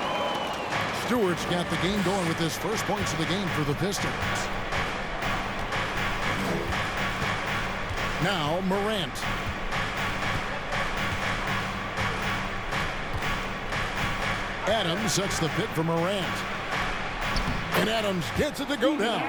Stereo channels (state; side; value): identical; both; correlation 1.00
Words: Stewart's got the game going with his first points of the game for the Pistons. Now, Morant. Adams sets the pick for Morant. And Adams gets it to go